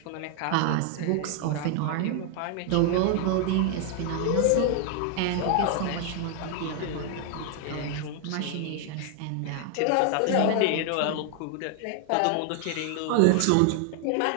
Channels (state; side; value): different; both; correlation 0.00